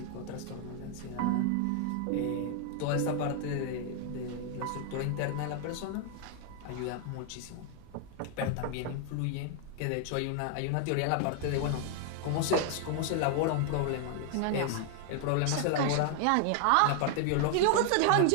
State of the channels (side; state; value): both; different; correlation 0.00